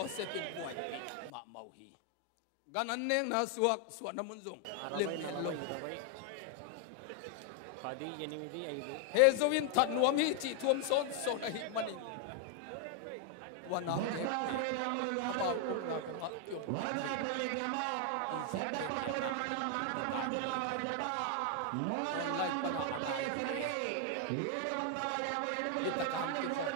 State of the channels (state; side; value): different; both; correlation 0.00